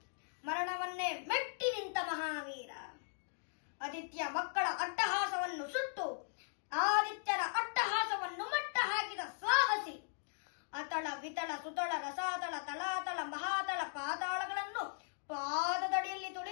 ಮರಣವನ್ನೇ ಮೆಟ್ಟಿ ನಿಂತ ಮಹಾವೀರ. ಆದಿತ್ಯ ಮಕ್ಕಳ ಅಟ್ಟಹಾಸವನ್ನು ಸುಟ್ಟು ಆದಿತ್ಯನ ಅಟ್ಟಹಾಸವನ್ನು ಮಟ್ಟ ಹಾಕಿದ ಸಾಹಸಿ. ಅತಳ ವಿತಳ ಸುತಳ ರಸಾತಳ ತಲಾತಳ ಮಹಾತಳ ಪಾತಾಳಗಳನ್ನು ಪಾದದಡಿಯಲ್ಲಿ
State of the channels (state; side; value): silent; right; digital silence